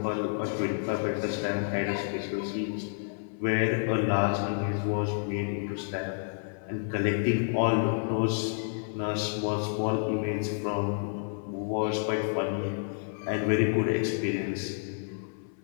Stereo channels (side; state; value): right; silent; 58 dB below the other